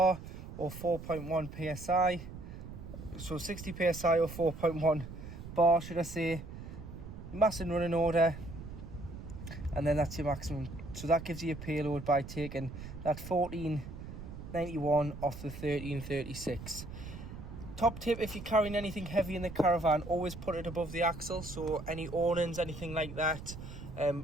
or 4.1 psi, so 60 psi or 4.1 bar should I say, mass and running order, and then that's your maximum. So that gives you a payload by taking that 1491 off the 1336. Top tip, if you're carrying anything heavy in the caravan, always put it above the axle. So any awnings, anything like that,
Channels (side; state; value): right; noise; rumble, 11 dB below the sound